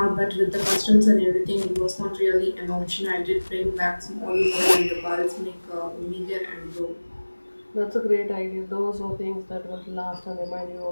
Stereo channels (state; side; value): inverted; both; correlation -1.00